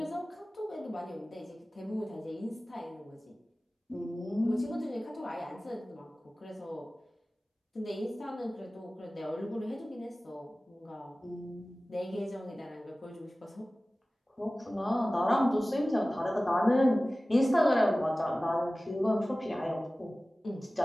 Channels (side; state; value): both; normal; correlation 0.97